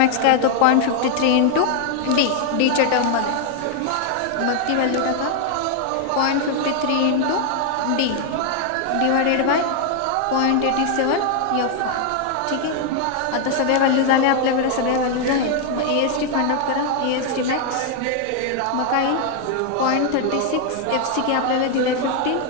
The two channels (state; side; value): different; both; correlation 0.00